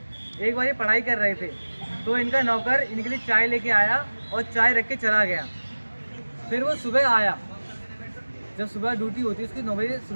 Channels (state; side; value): inverted; both; correlation -1.00